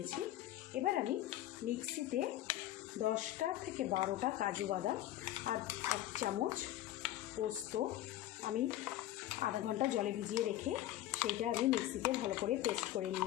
এবার আমি মিক্সিতে 10টা থেকে 12টা কাজু বাদাম আর 1 চামচ পোস্ত আমি আধা ঘন্টা জলে ভিজিয়ে রেখে সেইটা আমি মিক্সিতে ভালো করে পেস্ট করে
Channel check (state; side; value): quieter; right; 13.9 dB